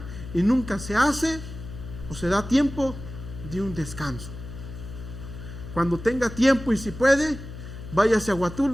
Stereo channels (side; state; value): left; noise; hum, 11 dB below the sound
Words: y nunca se hace o se da tiempo de un descanso. Cuando tenga tiempo y si puede, váyase a